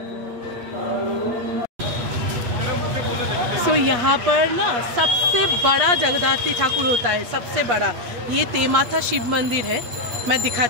तो यहाँ पर ना सबसे बड़ा जगद्धात्री ठाकुर होता है, सबसे बड़ा। ये तेमाथा शिव मंदिर है, मैं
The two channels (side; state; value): left; late; 8.3 ms